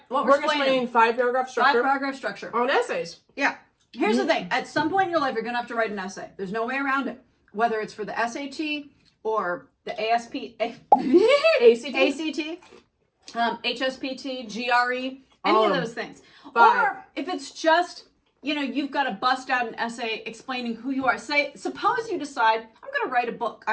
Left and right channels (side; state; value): both; identical; correlation 1.00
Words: What we're explaining 5-paragraph structure 5-paragraph structure. on essays. Yeah. Here's the thing. At some point in your life, you're going to have to write an essay. There's no way around it. Whether it's for the SAT or the ACT, HSPT, GRE, any of those things. 5. Or if it's just, you've got to bust out an essay explaining who you are. Suppose you decide, I'm going to write a book.